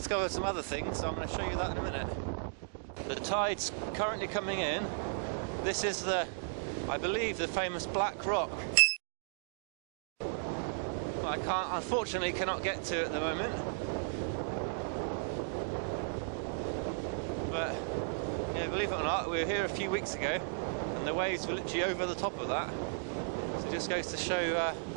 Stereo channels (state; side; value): silent; left; digital silence